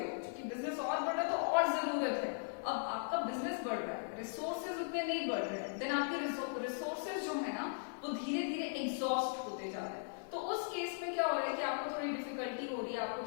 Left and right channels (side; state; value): right; silent; digital silence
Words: क्योंकि बिजनेस और बढ़ रहा है तो और जरूरत है, अब आपका बिजनेस बढ़ रहा है, रिसोर्सेज उतने नहीं बढ़ रहे हैं, देन आपके रिसोर्सेज जो है ना वो धीरे धीरे एग्जॉस्ट होते जा रहे हैं। तो उस केस में क्या हो रहा है कि आपको थोड़ी डिफिकल्टी हो रही है,